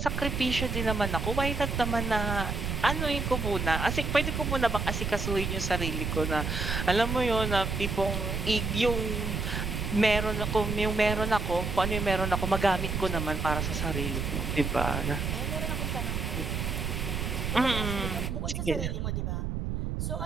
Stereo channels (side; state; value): right; noise; rumble, 2 dB below the sound